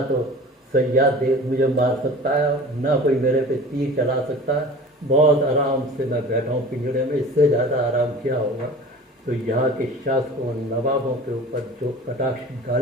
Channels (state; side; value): normal; both; correlation 0.40